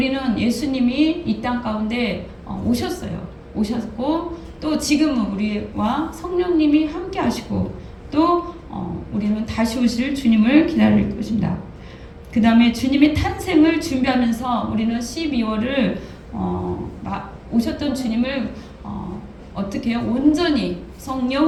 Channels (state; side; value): identical; both; correlation 1.00